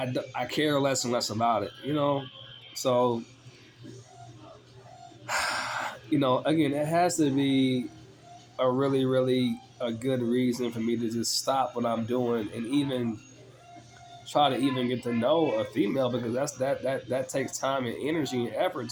care less and less about it. So again, it has to be a really, really a good reason for me to just stop what I'm doing and even try to even get to know a female, because that takes time and energy and effort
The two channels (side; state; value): both; identical; correlation 1.00